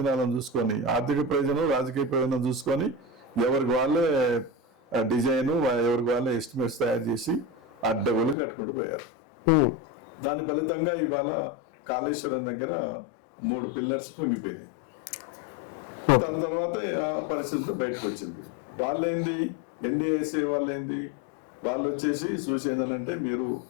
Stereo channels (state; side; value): drops out; right; at 8.3 s